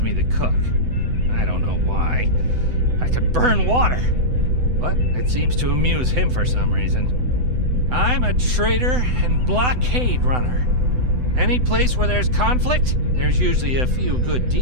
the cook. I don't know why. I could burn water, but it seems to amuse him for some reason. I'm a trader and blockade runner. Any place where there's conflict, there's usually a few good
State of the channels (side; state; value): left; late; 8.0 ms